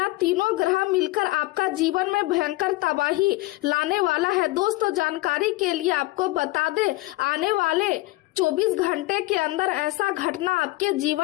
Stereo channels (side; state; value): right; quieter; 20.3 dB